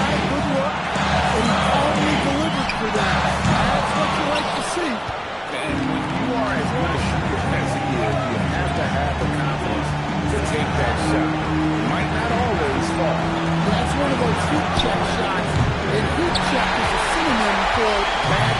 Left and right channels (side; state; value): both; identical; correlation 1.00